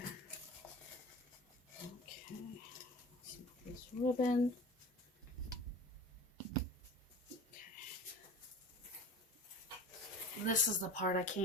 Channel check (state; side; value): normal; both; correlation 0.37